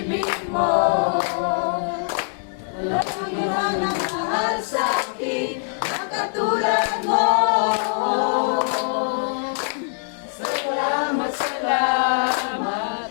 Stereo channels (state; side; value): silent; right; 64 dB below the other